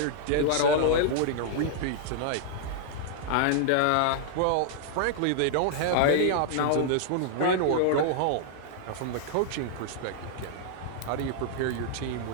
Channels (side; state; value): both; different; correlation -0.01